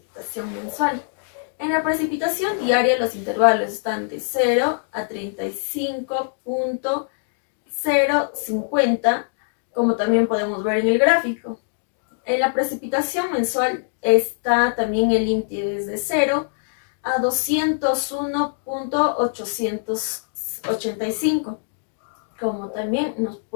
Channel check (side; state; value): right; silent; digital silence